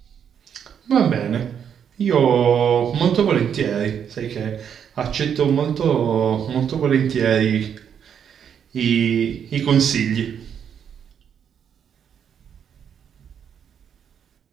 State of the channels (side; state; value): left; quieter; 8.2 dB